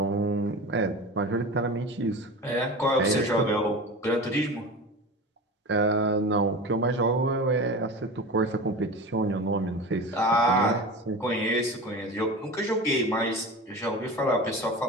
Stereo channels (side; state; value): both; normal; correlation 0.31